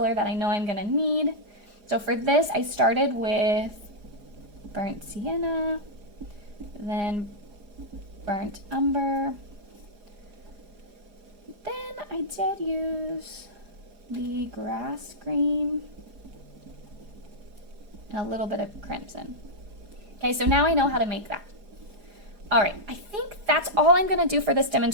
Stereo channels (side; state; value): left; late; 4.9 ms